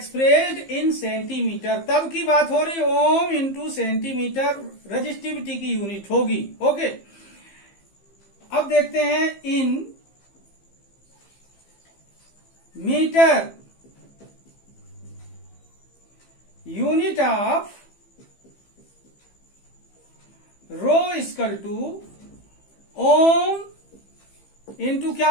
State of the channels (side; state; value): right; late; 15 ms